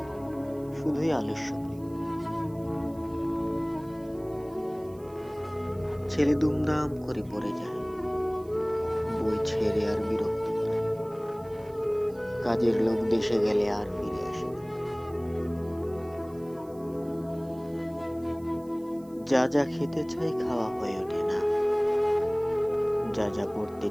শুধুই আলস্য প্রেম। ছেলে দুমদাম করে পড়ে যায়, বই ছেড়ে আর বিরক্ত করে। কাজের লোক দেশে গেলে আর ফিরে আসে না। যা যা খেতে চাই খাওয়া হয়ে ওঠে না, যা যা পড়তে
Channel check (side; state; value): right; noise; hiss, 27 dB below the sound